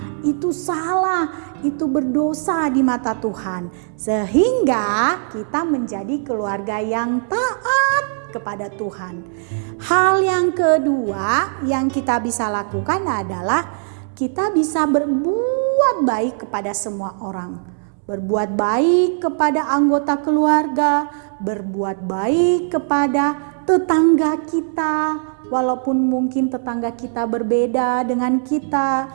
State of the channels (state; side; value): silent; left; 66 dB below the other